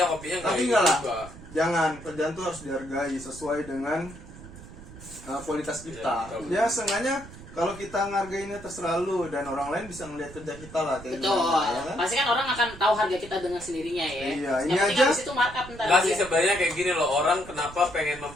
kopinya nggak Tapi ini enggak lah. juga. Jangan, kerjaan tuh harus dihargai sesuai dengan kualitas kita. Ya, betul. Ya seenggaknya kalau kita ngargainnya terserah lu dan orang lain bisa ngeliat kerja kita lah kayak Betul. gimana, ya kan? Pasti kan orang akan tahu harga kita dengan sendirinya ya. Iya, Yang ini penting aja. habis itu markup ntar. Nggak sih dia. sebenarnya kayak gini loh, orang kenapa pengen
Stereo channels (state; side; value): noise; right; rumble, 16 dB below the sound